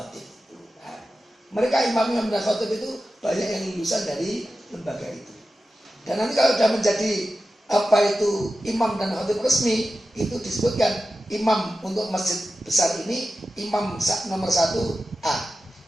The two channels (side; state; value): both; normal; correlation 0.93